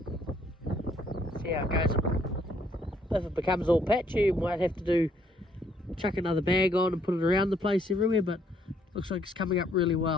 See how it goes. If it becomes all patchy, we might have to chuck another bag on and put it around the place everywhere, but looks like it's coming up really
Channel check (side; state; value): both; normal; correlation 0.67